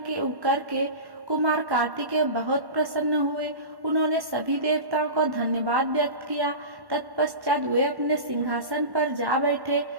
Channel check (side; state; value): left; late; 1.1 ms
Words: कुमार कार्तिकेय बहुत प्रसन्न हुए। उन्होंने सभी देवताओं को धन्यवाद व्यक्त किया। तत्पश्चात वे अपने सिंहासन पर जा बैठे।